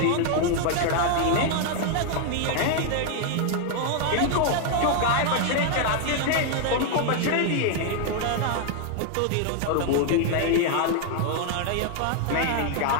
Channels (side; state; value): both; different; correlation 0.00